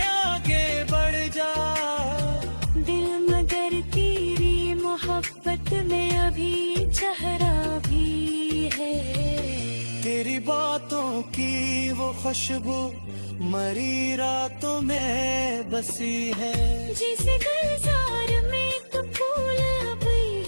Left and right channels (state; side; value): inverted; both; correlation -1.00